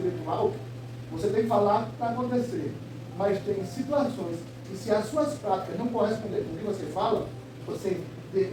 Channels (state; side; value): identical; both; correlation 1.00